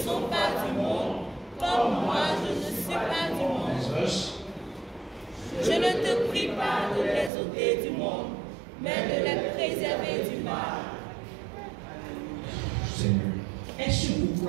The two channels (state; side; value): drops out; left; at 7.3 s